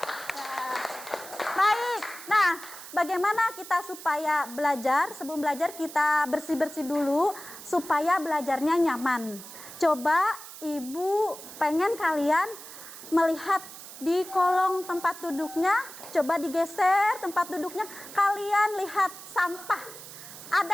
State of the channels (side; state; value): right; noise; hiss, 14 dB below the sound